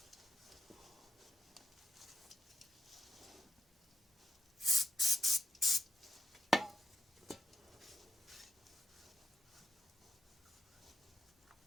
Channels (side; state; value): both; normal; correlation 0.82